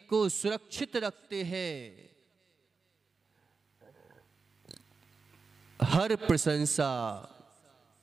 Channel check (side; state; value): left; quieter; 4.7 dB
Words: को सुरक्षित रखते हैं। हर प्रशंसा,